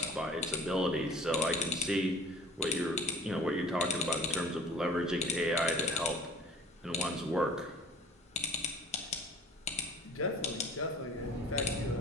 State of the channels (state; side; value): normal; both; correlation 0.47